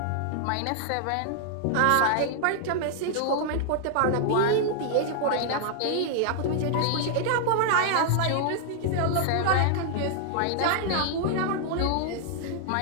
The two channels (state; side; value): different; both; correlation -0.01